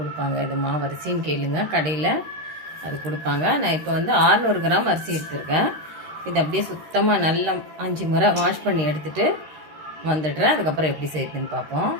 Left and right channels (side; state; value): left; late; 13 ms